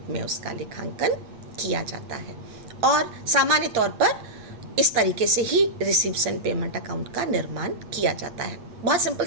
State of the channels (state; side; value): late; left; 8.4 ms